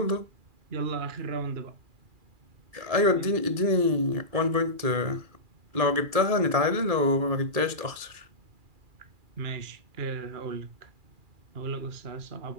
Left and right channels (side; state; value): left; late; 2.4 ms